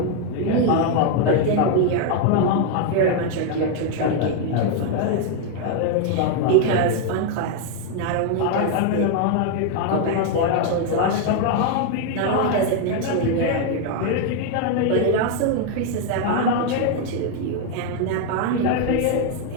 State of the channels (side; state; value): both; different; correlation 0.01